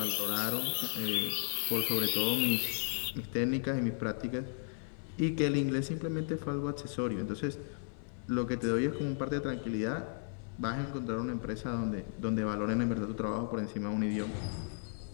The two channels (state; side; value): silent; right; 55 dB below the other